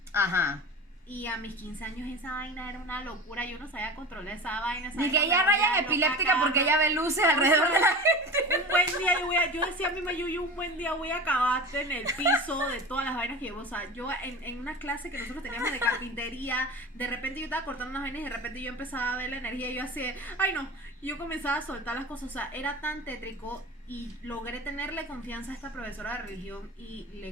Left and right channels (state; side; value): normal; both; correlation 0.32